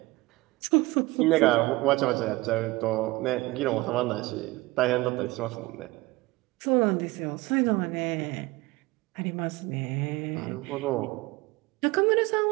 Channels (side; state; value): left; quieter; 21.3 dB